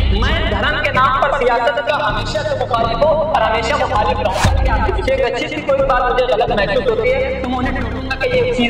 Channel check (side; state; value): both; identical; correlation 1.00